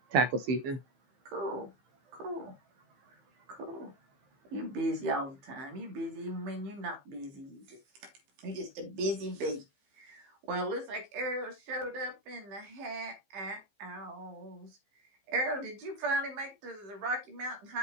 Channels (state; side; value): late; left; 15 ms